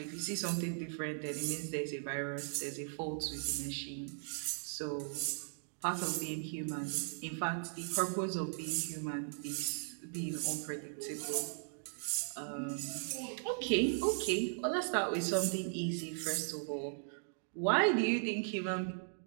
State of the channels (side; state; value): left; silent; digital silence